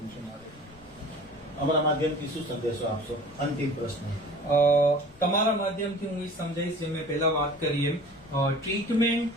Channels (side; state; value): left; noise; rumble, 25 dB below the sound